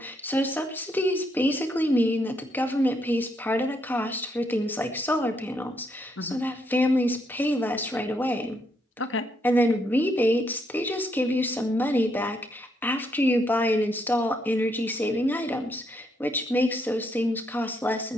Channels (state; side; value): normal; both; correlation 0.75